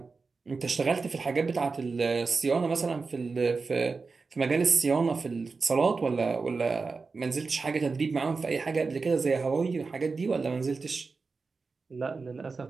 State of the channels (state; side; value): quieter; left; 4.4 dB